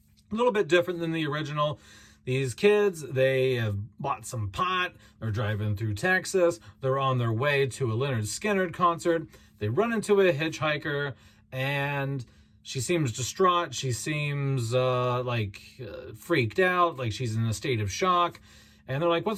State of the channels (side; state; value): both; identical; correlation 1.00